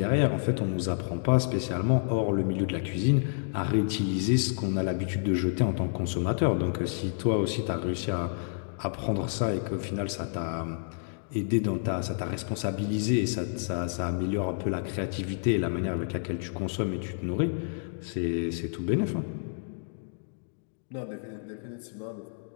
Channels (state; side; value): silent; right; digital silence